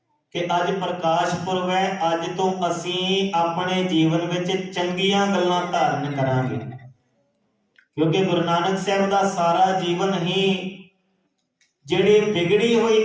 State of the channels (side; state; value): both; identical; correlation 1.00